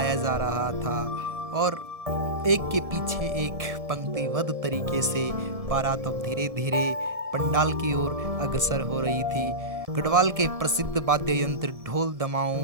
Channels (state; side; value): late; left; 1.7 ms